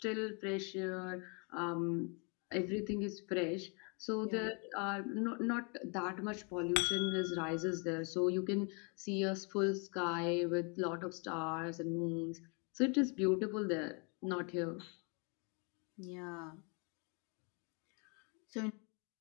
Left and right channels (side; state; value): right; quieter; 34.9 dB